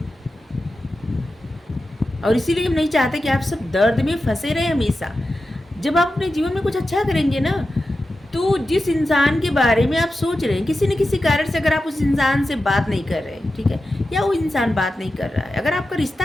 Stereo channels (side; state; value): both; normal; correlation 0.92